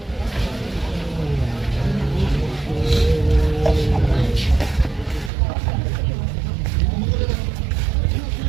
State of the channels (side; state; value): left; drops out; at 5.3 s